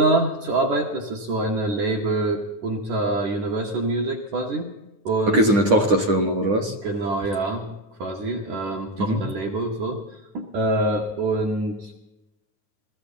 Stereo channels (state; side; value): late; left; 9.9 ms